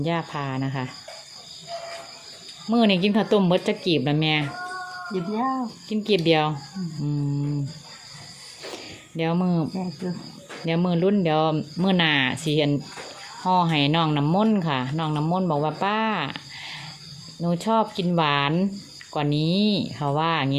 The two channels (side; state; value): both; identical; correlation 1.00